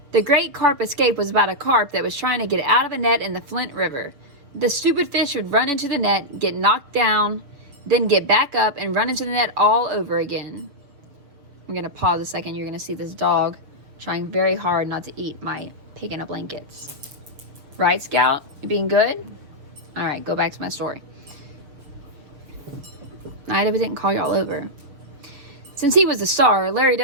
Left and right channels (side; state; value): left; late; 7.1 ms